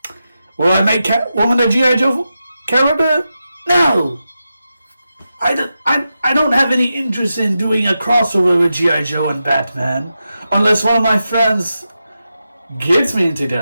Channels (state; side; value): inverted; both; correlation -0.89